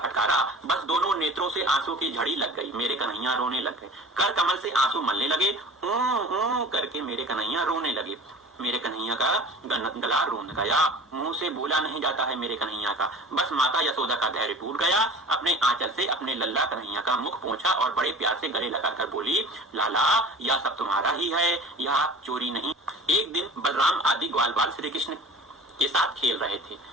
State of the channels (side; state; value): both; normal; correlation 0.40